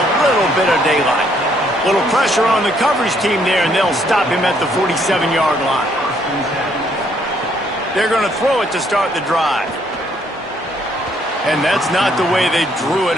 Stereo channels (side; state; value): both; normal; correlation 0.69